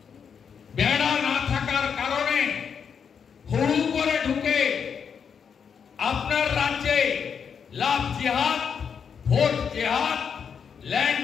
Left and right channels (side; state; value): right; quieter; 6.9 dB